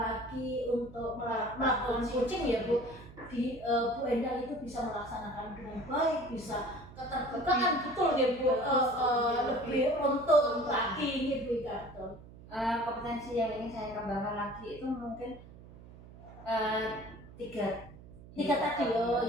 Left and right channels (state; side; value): noise; right; hum, 18 dB below the sound